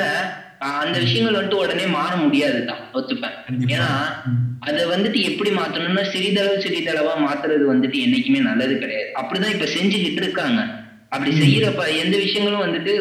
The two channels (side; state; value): both; identical; correlation 1.00